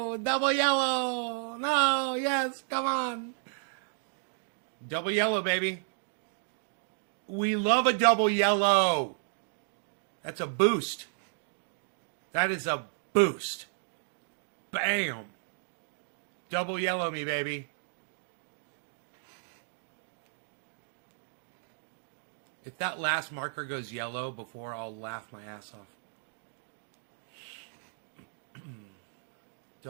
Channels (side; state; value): left; silent; digital silence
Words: do? Double yellow. No. Yes. Come on. Double yellow, baby. We love a double yellow. That's a boost. That is a boost. Bam. Double yellow me, baby. If that last marker goes yellow before, I'll laugh my ass off.